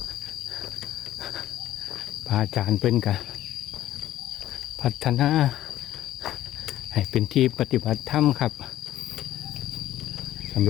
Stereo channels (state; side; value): quieter; right; 13.6 dB